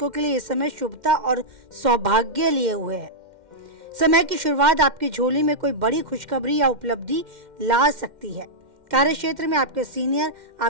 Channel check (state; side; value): late; left; 2.1 ms